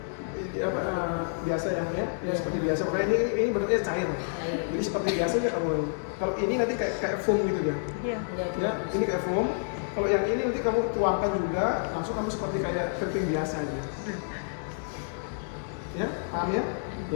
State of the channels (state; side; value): silent; right; digital silence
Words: Biasa yang ya seperti biasa. Makanya ini bentuknya cair. Jadi seperti biasa aja kamu. Kalau ini nanti kayak foam gitu ya. Iya. Ya, ini kayak foam. Kalau yang ini nanti kamu tuangkan juga, langsung kamu seperti kayak keriting biasa aja. Ya, paham ya?